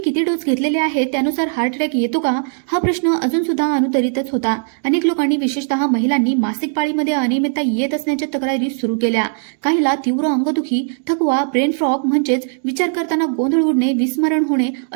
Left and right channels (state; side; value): silent; left; digital silence